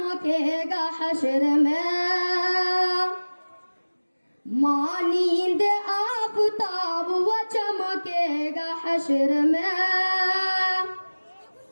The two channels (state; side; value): inverted; both; correlation -1.00